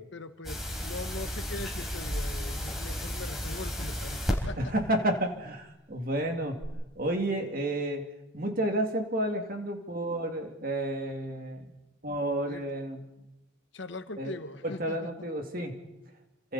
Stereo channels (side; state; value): both; normal; correlation 0.38